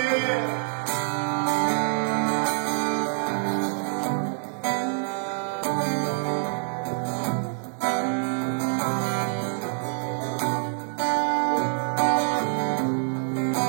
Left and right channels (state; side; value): silent; left; 61 dB below the other